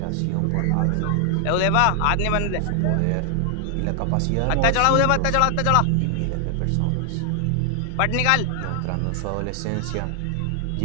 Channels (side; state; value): both; different; correlation 0.00